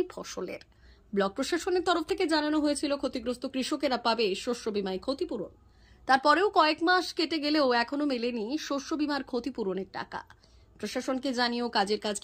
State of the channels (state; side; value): identical; both; correlation 1.00